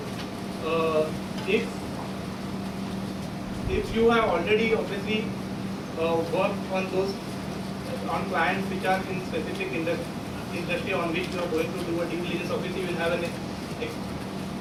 if you have already obviously worked on clients which are in specific industry on which you are going to do a due diligence, obviously you will have an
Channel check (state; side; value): identical; both; correlation 1.00